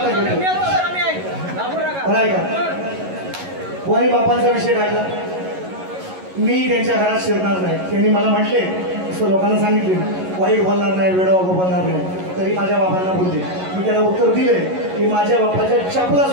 का कोणी बापांचा विषय काढला. मी त्यांच्या घरात शिरणार नाही. त्यांनी मला म्हटले असं लोकांना सांगितले वाईट बोलणार नाही वेडवा बोलणार नाही. तरी माझ्या बाबांना बोलले. मी त्यांना उत्तर दिले की माझ्या बापाच्या चपला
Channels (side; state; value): left; late; 11 ms